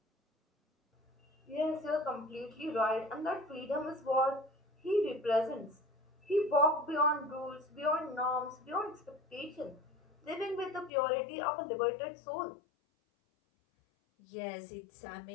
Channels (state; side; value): drops out; right; at 10.9 s